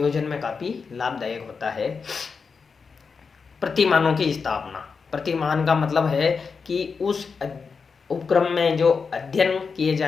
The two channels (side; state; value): right; quieter; 5.3 dB